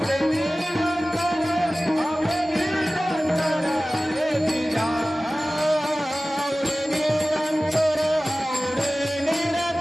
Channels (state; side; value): normal; both; correlation 0.97